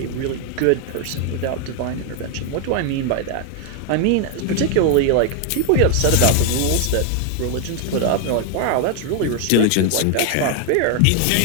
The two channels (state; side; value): different; both; correlation 0.01